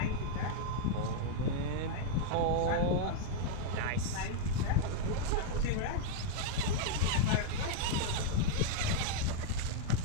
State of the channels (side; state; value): both; different; correlation -0.01